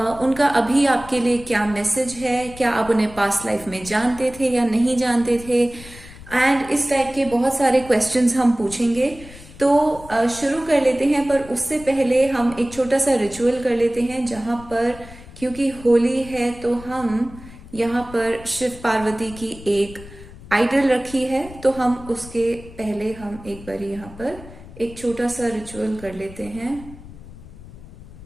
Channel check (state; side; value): noise; left; rumble, 17 dB below the sound